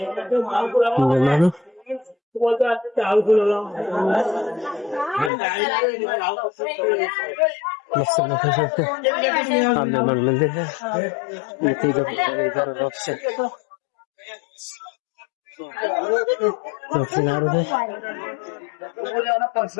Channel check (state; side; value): drops out; right; at 5.3 s